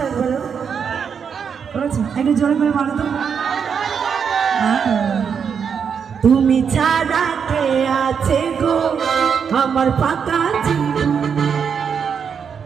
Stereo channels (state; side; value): quieter; left; 6.8 dB